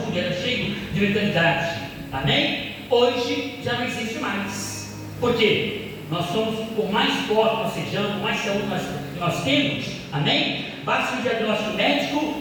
era cheio de vitalidade, amém? Hoje já não existe mais. Por quê? Nós somos, por mais forte nós sejamos, por mais saúde nós temos, amém? Basta um diagnóstico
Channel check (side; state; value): both; identical; correlation 1.00